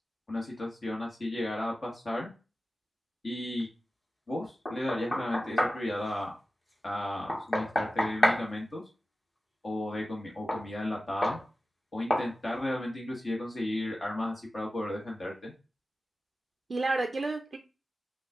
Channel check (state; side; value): normal; both; correlation 0.94